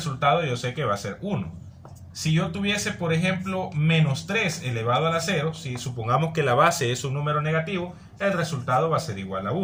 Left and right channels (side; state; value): both; identical; correlation 1.00